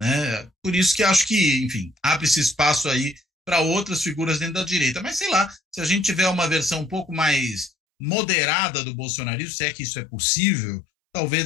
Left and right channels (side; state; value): right; drops out; at 7.7 s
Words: né? Por isso que acho que, enfim, abre-se espaço aí para outras figuras dentro da direita. Mas sei lá, se a gente tiver uma versão um pouco mais moderada do bolsonarismo, se é que isso é possível,